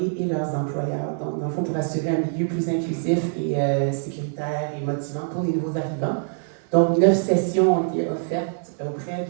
et leurs employeurs. Donc, dans le fond, pour assurer un milieu plus inclusif et sécuritaire et motivant pour les nouveaux arrivants. Donc, 9 sessions ont été offertes auprès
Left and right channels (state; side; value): silent; left; digital silence